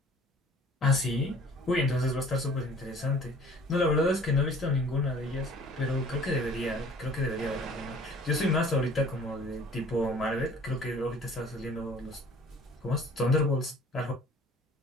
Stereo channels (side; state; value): both; normal; correlation 0.50